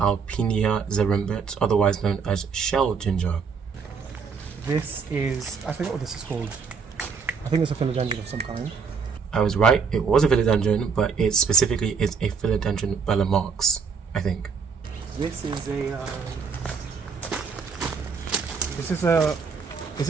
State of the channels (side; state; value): left; quieter; 5.7 dB